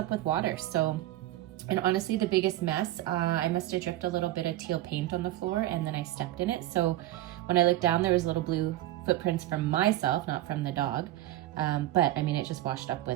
with water. So, and honestly, the biggest mess, I must have dripped a little bit of teal paint on the floor, and then I stepped in it. So when I looked down, there was little blue footprints from myself, not from the dog. But I mean, it just washed up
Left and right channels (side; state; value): left; quieter; 15.3 dB